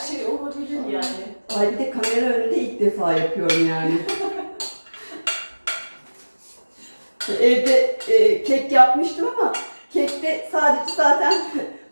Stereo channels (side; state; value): both; inverted; correlation -1.00